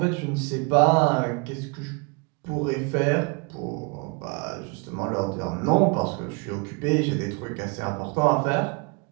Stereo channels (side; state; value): left; quieter; 32.3 dB